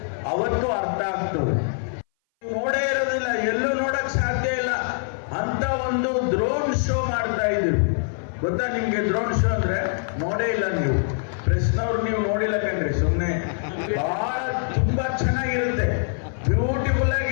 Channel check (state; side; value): silent; right; 59 dB below the other